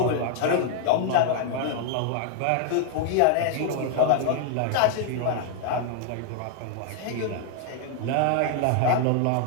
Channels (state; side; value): different; both; correlation 0.00